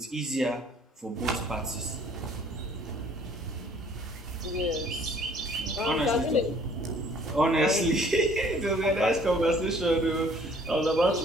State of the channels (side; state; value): both; normal; correlation 0.57